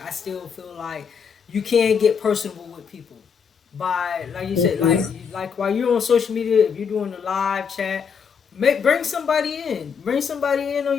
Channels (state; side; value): quieter; right; 6.5 dB